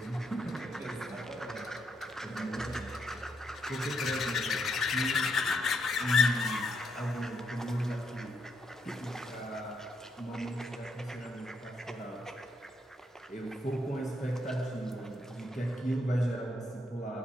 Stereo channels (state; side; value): normal; both; correlation 0.76